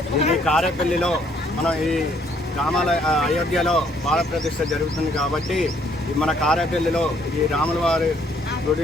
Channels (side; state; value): both; normal; correlation 0.66